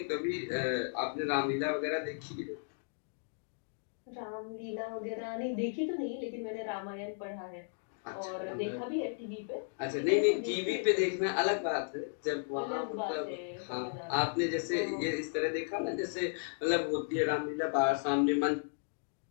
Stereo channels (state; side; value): silent; right; digital silence